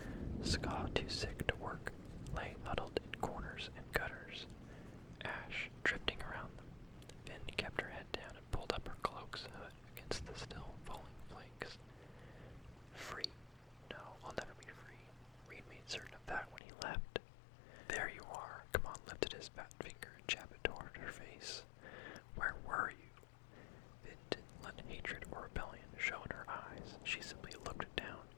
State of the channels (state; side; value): drops out; right; at 16.6 s